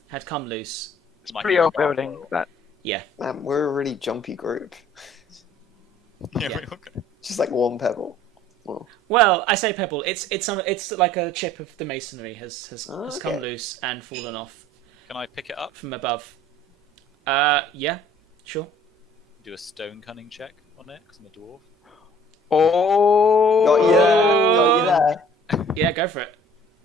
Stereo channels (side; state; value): both; normal; correlation 0.53